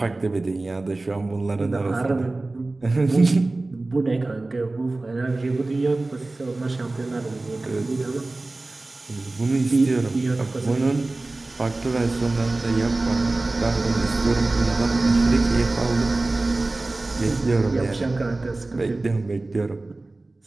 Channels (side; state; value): left; quieter; 3.1 dB